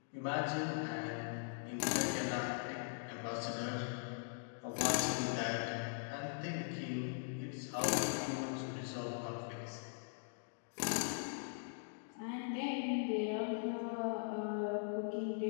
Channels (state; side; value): silent; right; digital silence